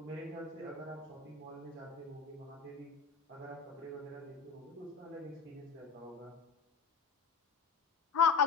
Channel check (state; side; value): quieter; right; 5.6 dB